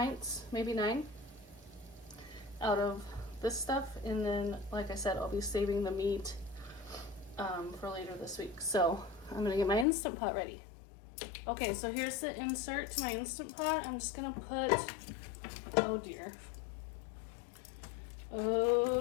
maybe 9 out of this stuff. And then, like I said, I'll be saving the meat for later this week. So I'm gonna get my Instant Pot ready. Okay, so here's the insert to my Instant Pot. I'm just gonna put, oh dear.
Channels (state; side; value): drops out; right; at 9.9 s